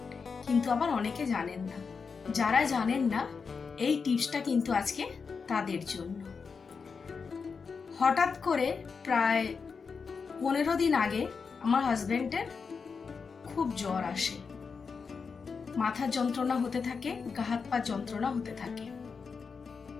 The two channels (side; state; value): right; quieter; 5.4 dB